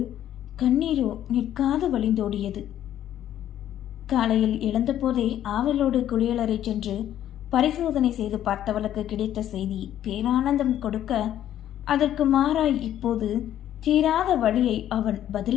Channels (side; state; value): right; quieter; 11.5 dB